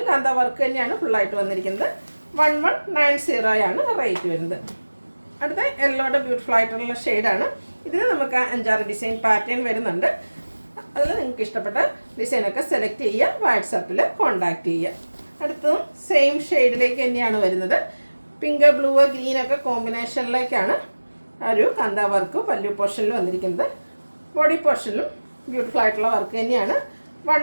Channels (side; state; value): both; inverted; correlation -1.00